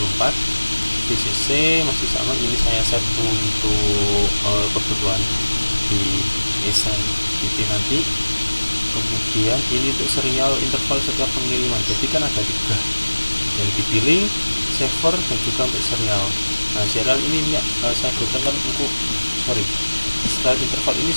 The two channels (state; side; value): inverted; both; correlation -1.00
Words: VCC masih sama. Ini saya set untuk kebutuhan di SMPP nanti. Kemudian ini untuk serial interval setiap pengiriman. Jadi kan ada 3 yang dipilih, server dan juga untuk serial. Nah, serial ini saya butuhkan untuk serial interval ini